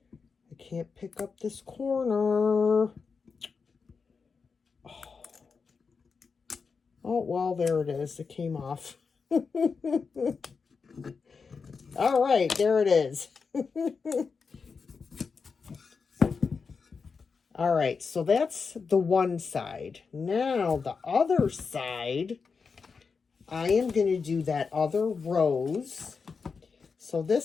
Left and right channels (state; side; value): quieter; right; 5.2 dB